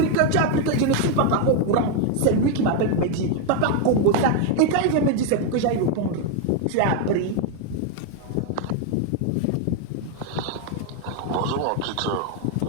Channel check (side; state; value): both; different; correlation 0.01